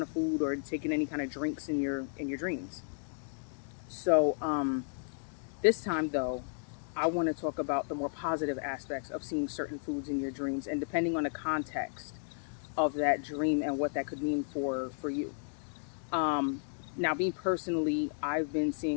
of food or taking any kind of drinks in your dreams. So this time, though, I want to talk about the more positive aspects of seeing certain foods in your dreams, and depending on the context of that dream and what that could mean for you. Now, me personally, I've been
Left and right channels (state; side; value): silent; right; digital silence